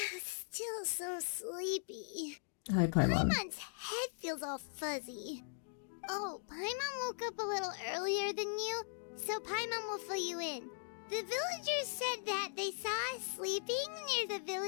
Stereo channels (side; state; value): right; silent; digital silence